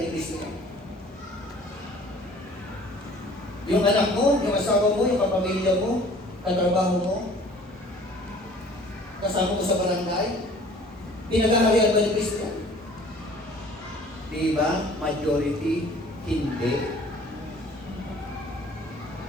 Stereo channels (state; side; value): normal; both; correlation 0.51